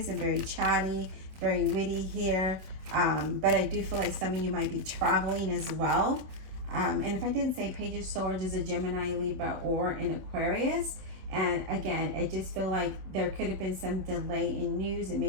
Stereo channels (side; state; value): left; late; 27 ms